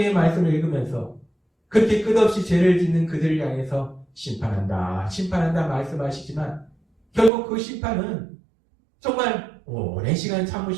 말씀을 읽으면서 그렇게 끝없이 죄를 짓는 그들을 향해서 심판한다, 심판한다 말씀하시지만 결국 그 심판은 정말 오랜 시간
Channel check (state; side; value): drops out; left; at 7.3 s